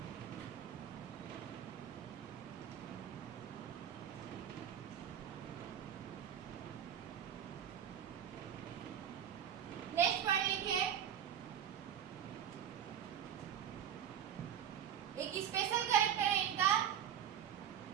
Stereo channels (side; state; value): left; quieter; 9.4 dB